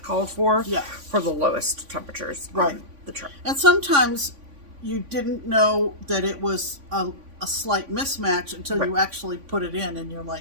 called for the lowest temperatures on the chart. And sometimes you didn't know that it was a slight mismatch until you actually put it in, and you're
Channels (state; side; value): late; left; 3.5 ms